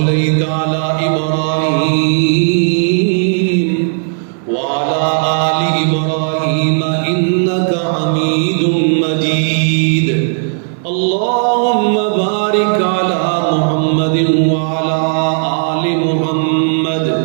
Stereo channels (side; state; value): left; silent; digital silence